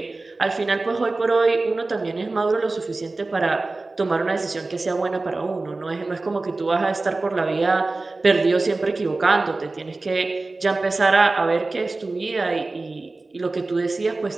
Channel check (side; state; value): left; quieter; 3.3 dB